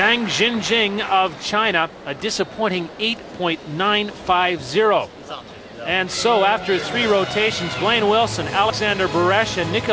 Jinjing of China, a disappointing 8.950. And so after 3 rotations, Blaine Wilson, Alexander Beresh, and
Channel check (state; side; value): identical; both; correlation 1.00